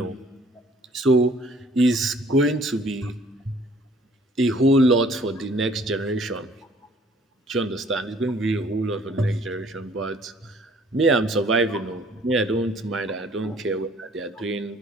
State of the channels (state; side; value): normal; both; correlation 0.57